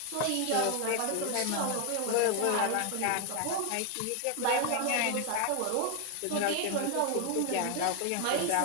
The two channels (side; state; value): both; different; correlation 0.01